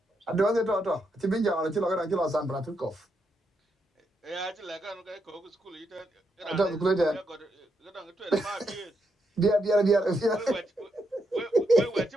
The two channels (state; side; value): normal; both; correlation 0.80